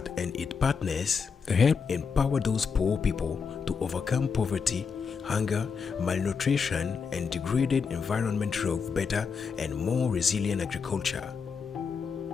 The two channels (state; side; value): quieter; right; 5.8 dB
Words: and its partners help empower those poor people to overcome poverty, hunger, malnutrition, and degraded environment through better and more resilient agriculture.